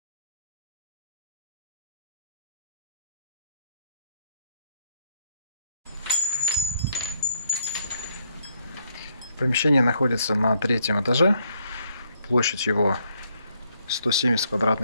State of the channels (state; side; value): inverted; both; correlation -0.70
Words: Помещение находится на 3-м этаже, площадь его 170